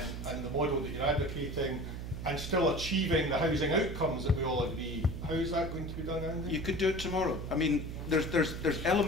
and the model that you're advocating, and still achieving the housing outcomes that we all agree. How is that going to be done, Andy? You could do it tomorrow. I mean, there's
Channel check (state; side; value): noise; right; hum, 7 dB below the sound